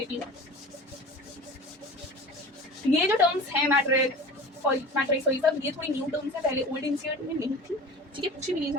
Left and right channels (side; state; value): both; normal; correlation 0.37